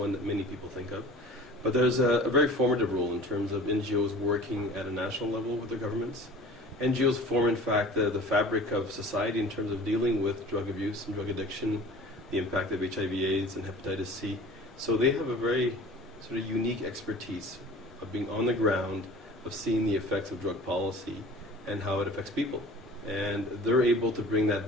that many people think of. But there's a very formative role in terms of NGOs working at a national level with their governments. NGOs form, in fact, the fabric of society in terms of dealing with drug abuse and drug addiction, the impact of HIV/AIDS and hepatitis C. So they have a very sort of unique expertise of being on the ground, of seeing the effects of drug policy and how it affects people. And they're able to bring that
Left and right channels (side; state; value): both; normal; correlation 0.43